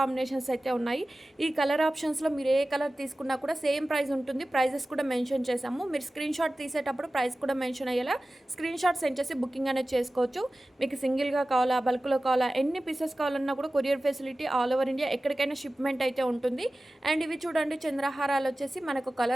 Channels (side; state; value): both; normal; correlation 0.96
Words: అయితే ఉన్నాయి. ఈ కలర్ ఆప్షన్స్లో మీరు ఏ కలర్ తీసుకున్నా కూడా సేమ్ ప్రైస్ ఉంటుంది. ప్రైజెస్ కూడా మెన్షన్ చేసాము. మీరు స్క్రీన్ షాట్ తీసేటప్పుడు ప్రైస్ కూడా మెన్షన్ అయ్యేలా స్క్రీన్ షాట్ సెండ్ చేసి బుకింగ్ అనేది చేసుకోవచ్చు. మీకు సింగిల్గా కావాలా, బల్క్లో కావాలా, ఎన్ని పీసెస్ కావాలన్నా కూడా courier facility all over India ఎక్కడికైనా షిప్మెంట్ అయితే ఉంటుంది. అండ్ ఇవి చూడండి, చంద్రహారాలు వచ్చేసి మనకు